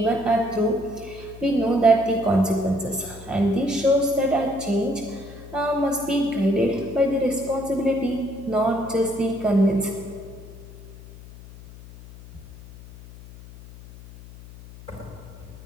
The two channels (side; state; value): left; noise; hum, 18 dB below the sound